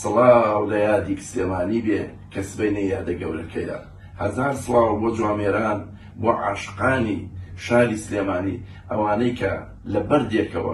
لە یادی سلێمانی بێ کە سبەینە یادە گەورەکەیە. 1000 سڵاو بۆ جوامێران بۆ عاشقانی شاری سلێمانی ئەوانەی کە لە بەردێکەوە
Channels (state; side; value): identical; both; correlation 1.00